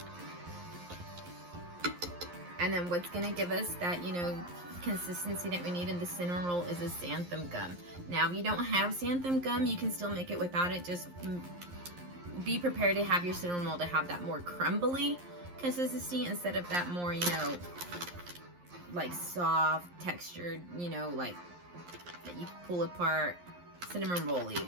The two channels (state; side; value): late; left; 11 ms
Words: And then what's gonna give us that, you know, consistency that we need in the cinnamon roll is a xanthan gum. Now, if you don't have xanthan gum, you can still make it without it. Just be prepared to have your cinnamon roll to have that more crumbly consistency instead of that more, you know, like soft textured, you know, like that you pull apart, cinnamon